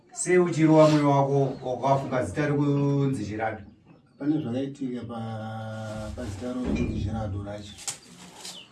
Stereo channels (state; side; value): identical; both; correlation 1.00